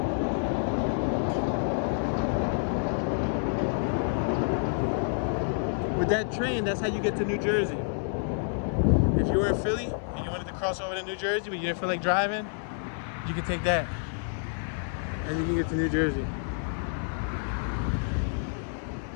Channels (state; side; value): silent; right; 59 dB below the other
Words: With that train, that's how you get to New Jersey. If you were in Philly and you wanted to cross over to New Jersey but you didn't feel like driving, you can take that and you can get to New Jersey.